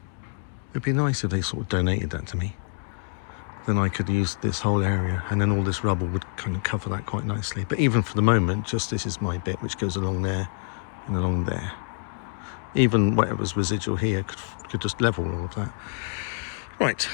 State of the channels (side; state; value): right; silent; 60 dB below the other